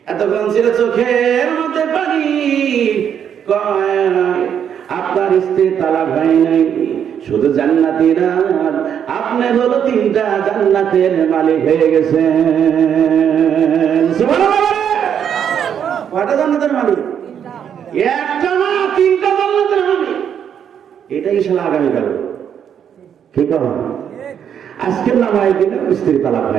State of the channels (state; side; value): quieter; left; 8.5 dB